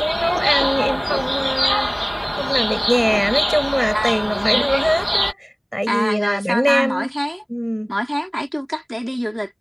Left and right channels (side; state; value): both; identical; correlation 1.00